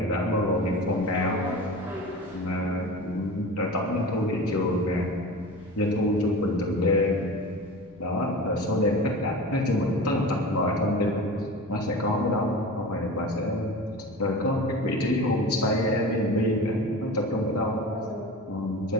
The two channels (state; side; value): normal; both; correlation 0.33